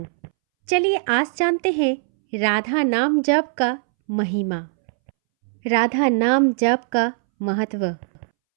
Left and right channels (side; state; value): left; silent; 65 dB below the other